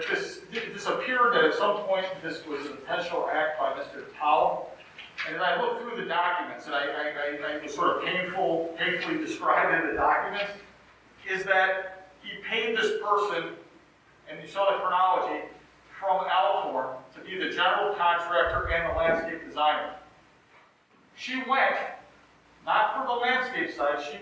appeared that at some point this was an intentional act by Mr. Tao. And as I looked through the documents, and I was sort of painfully described in the documents, is that he paid this person, and you saw the chronology, from Alcorn to be the general contractor and the landscape designer. She went, not for the landscape side, she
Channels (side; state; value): both; identical; correlation 1.00